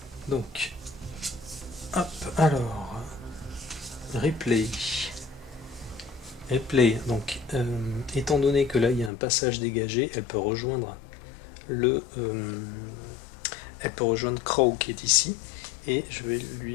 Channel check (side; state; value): right; drops out; at 9.1 s